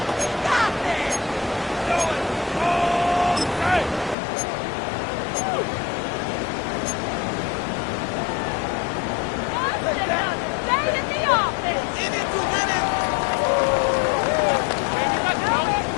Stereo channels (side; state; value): right; drops out; at 4.2 s